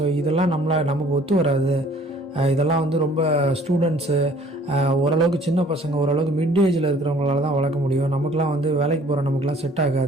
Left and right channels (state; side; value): normal; both; correlation 0.55